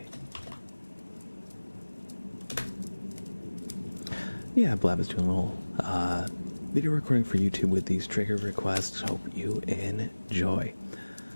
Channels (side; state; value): both; inverted; correlation -1.00